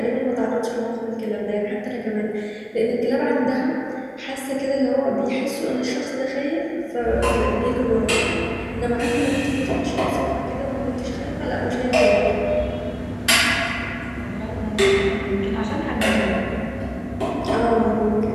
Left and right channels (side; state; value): both; identical; correlation 1.00